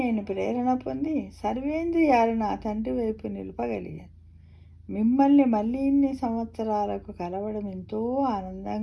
ప్రేరణ పొంది సర్వేంద్రియాలు నా తండ్రి వైపు నిలపగలిగాను. మిమ్మల్ని మళ్ళీ ఇన్ని సంవత్సరాలకు కలవడం ఎంతో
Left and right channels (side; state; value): both; identical; correlation 1.00